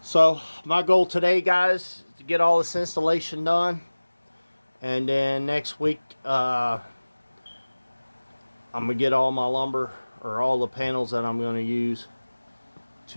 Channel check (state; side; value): inverted; both; correlation -1.00